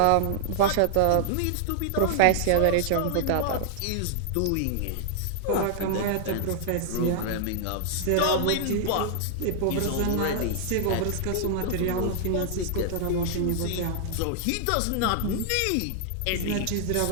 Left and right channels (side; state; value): both; different; correlation -0.01